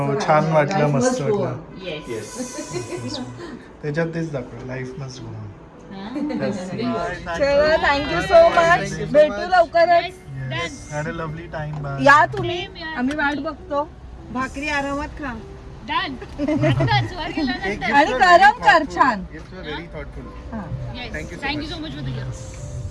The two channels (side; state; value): both; identical; correlation 1.00